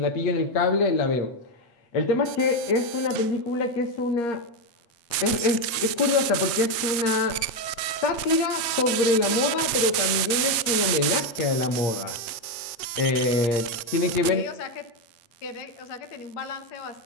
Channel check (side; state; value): right; late; 8.2 ms